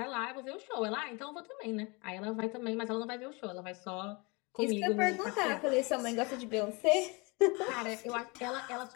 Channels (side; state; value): right; quieter; 28.2 dB